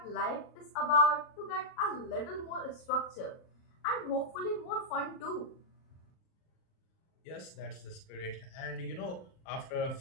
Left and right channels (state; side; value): late; right; 38 ms